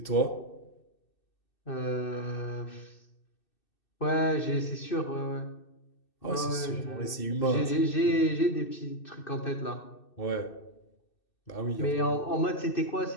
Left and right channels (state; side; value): late; right; 2.6 ms